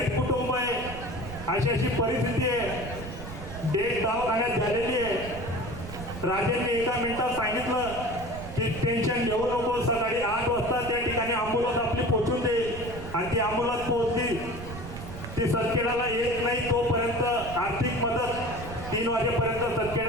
कुटुंब आहे, अशी अशी परिस्थिती आहे, डेट दवाखान्यात झालेली आहे. राजेंनी एका मिनिटात सांगितलं की टेन्शन घेऊ नको, सकाळी 8 वाजता त्या ठिकाणी अँब्युलन्स आपली पोहोचून देईल. आणि ती अँब्युलन्स पोहोचली, ती सतखेड्याला येत नाही तोपर्यंत आर्थिक मदत 3 वाजेपर्यंत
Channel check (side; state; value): right; noise; rumble, 11 dB below the sound